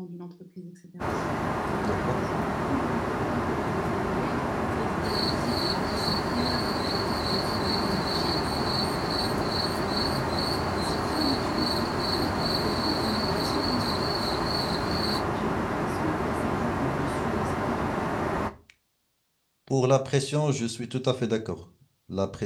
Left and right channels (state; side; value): identical; both; correlation 1.00